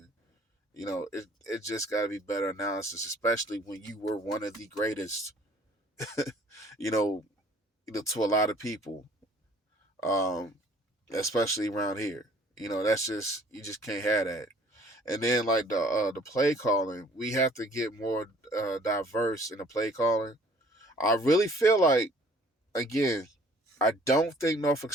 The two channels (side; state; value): both; normal; correlation 0.56